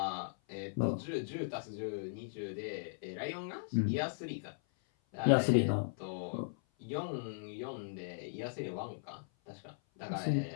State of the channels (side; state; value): right; silent; 53 dB below the other